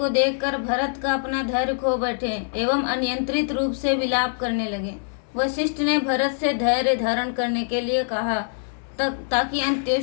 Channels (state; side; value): silent; right; 61 dB below the other